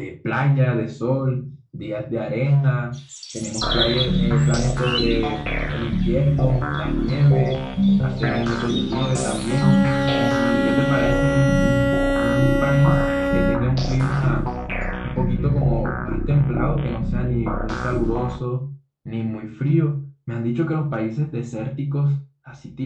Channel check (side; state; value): both; identical; correlation 1.00